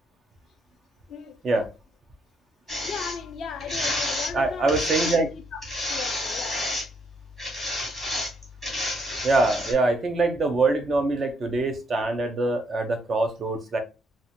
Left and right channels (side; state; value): both; normal; correlation 0.73